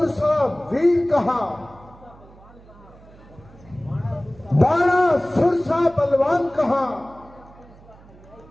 वीर कहा, बाणा सुरसा बलवान कहा,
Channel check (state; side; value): noise; right; hum, 23 dB below the sound